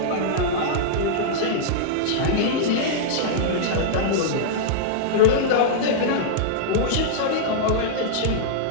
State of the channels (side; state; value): both; different; correlation -0.02